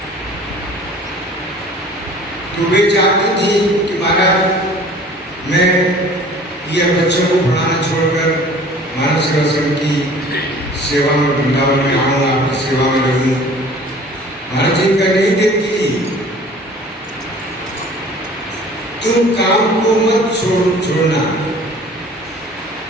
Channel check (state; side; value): normal; both; correlation 0.48